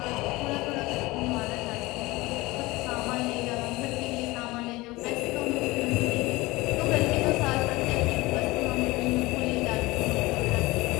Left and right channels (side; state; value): right; quieter; 21.0 dB